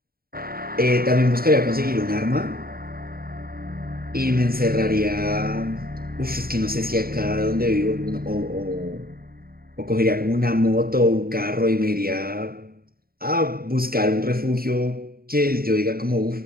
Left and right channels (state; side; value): late; left; 0.43 ms